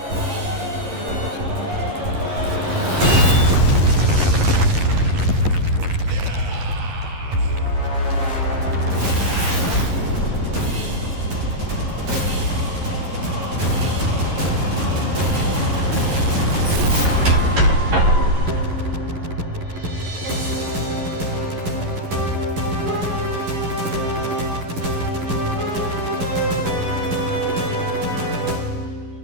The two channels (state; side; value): late; left; 11 ms